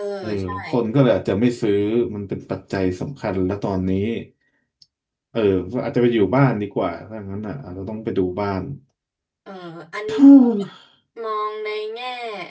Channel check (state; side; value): identical; both; correlation 1.00